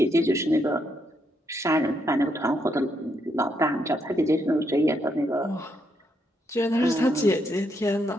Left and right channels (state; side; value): normal; both; correlation 0.77